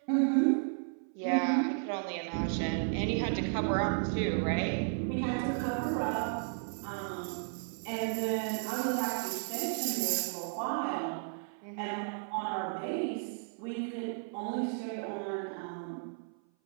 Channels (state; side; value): silent; left; 55 dB below the other